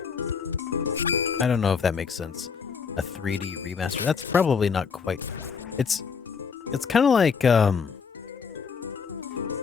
I don't know if that makes sense. A 3D remaster. That's probably not quite. It's kind of like it's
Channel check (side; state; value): right; quieter; 5.9 dB